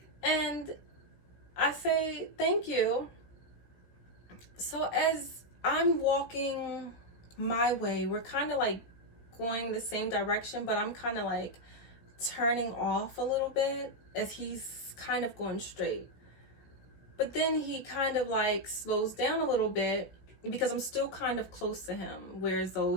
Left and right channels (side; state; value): right; late; 16 ms